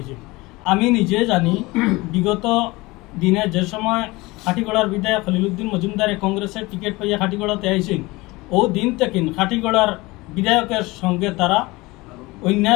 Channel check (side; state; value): right; quieter; 22.1 dB